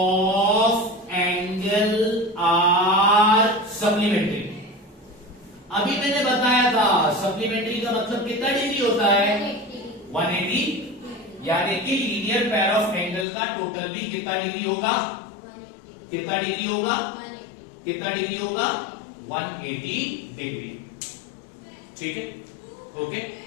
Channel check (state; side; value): drops out; right; at 13.2 s